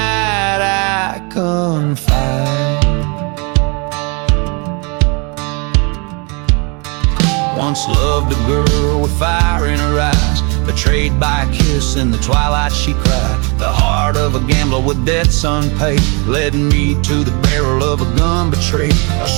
I confide. Once loved a girl with fire in her eyes, betrayed by a kiss in the twilight she cried. The heart of a gambler with debts unpaid led me to the barrel of a gun betrayed. A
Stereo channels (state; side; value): quieter; left; 31.7 dB